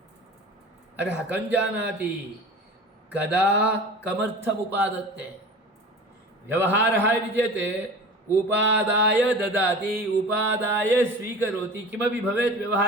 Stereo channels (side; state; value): both; normal; correlation 0.37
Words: अतः कं जानाति कदा कमर्थमुपादत्ते व्यवहारः इति चेत् उपादाय ददाति उपादाय स्वीकरोति किमपि भवेत्